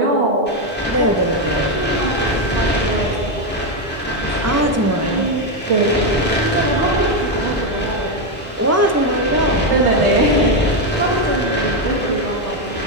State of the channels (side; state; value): both; normal; correlation 0.06